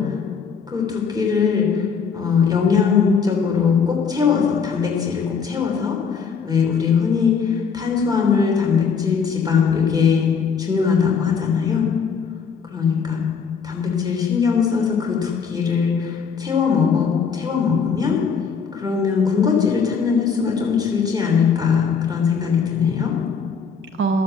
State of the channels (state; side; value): quieter; right; 6.0 dB